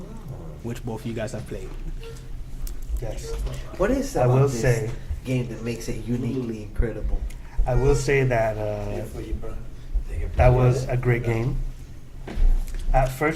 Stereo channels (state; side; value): identical; both; correlation 1.00